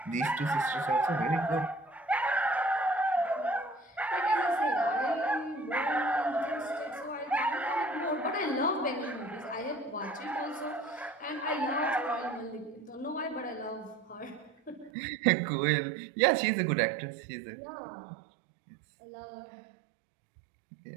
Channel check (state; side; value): drops out; left; at 14.9 s